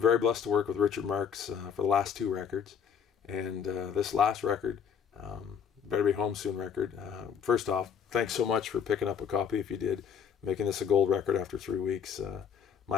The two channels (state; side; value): quieter; right; 7.4 dB